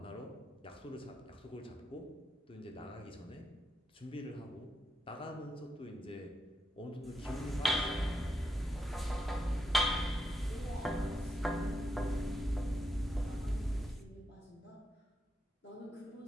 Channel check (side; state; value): both; normal; correlation 0.83